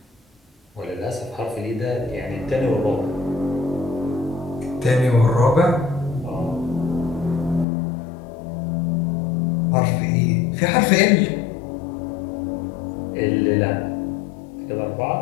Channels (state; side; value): drops out; right; at 7.7 s